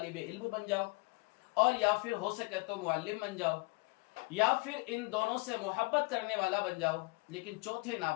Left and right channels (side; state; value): right; quieter; 26.9 dB